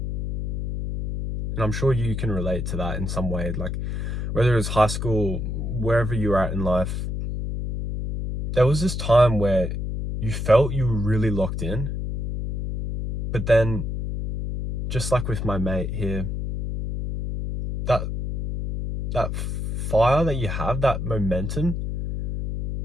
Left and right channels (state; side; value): noise; left; hum, 2 dB below the sound